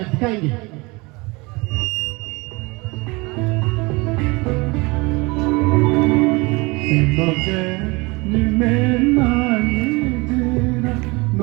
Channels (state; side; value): quieter; left; 25.2 dB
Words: दिखाएंगे। Lo que ni me naguera,